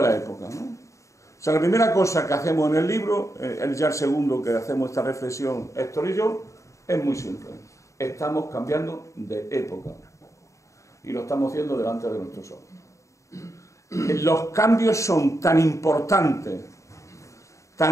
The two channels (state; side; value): late; right; 0.15 ms